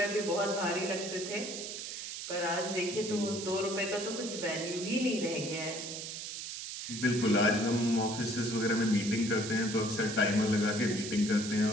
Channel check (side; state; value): right; noise; hiss, 7 dB below the sound